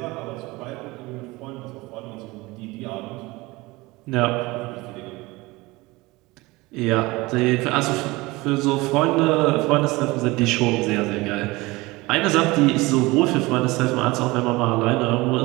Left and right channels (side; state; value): left; quieter; 21.9 dB